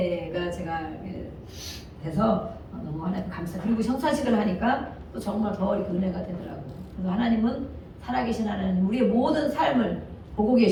제가 돼서 너무 하나님 감사. 그리고 성사식을 하니까 또 정말 더 이렇게 은혜가 되더라고요. 그래서 하나님은 살아계신 하나님, 우리의 모든 삶을 보고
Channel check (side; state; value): both; identical; correlation 1.00